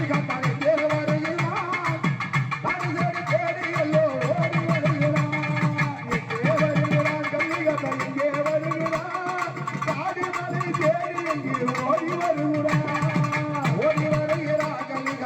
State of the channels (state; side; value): identical; both; correlation 1.00